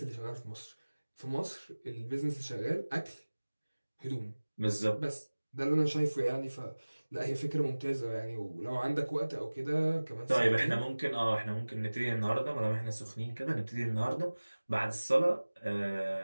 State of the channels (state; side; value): inverted; both; correlation -1.00